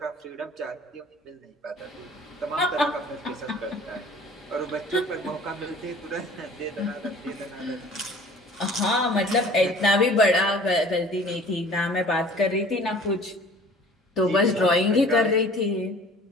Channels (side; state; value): both; normal; correlation 0.48